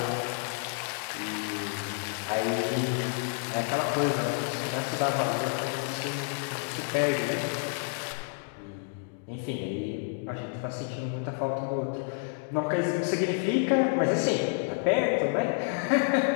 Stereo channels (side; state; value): right; silent; 58 dB below the other